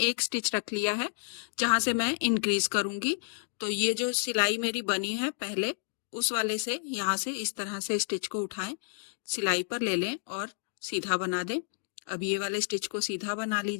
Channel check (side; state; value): right; silent; digital silence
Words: स्टिच रख लिया है जहां से मैं इंक्रीज करूंगी। तो ये जो सिलाई मेरी बनी है पहले, उस वाले से यहाँ से इस तरह से स्टिच को उठाएं, सिलाई पर ले लें और सीधा बना दें। अब ये वाले स्टिच को सीधा बना